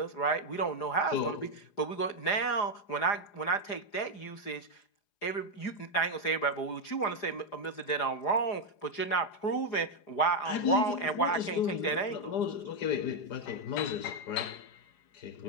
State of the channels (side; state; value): right; late; 4.9 ms